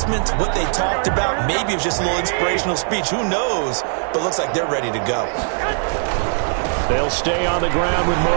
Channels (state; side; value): silent; left; 66 dB below the other